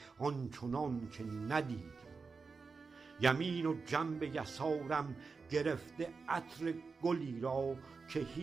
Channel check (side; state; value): left; quieter; 4.7 dB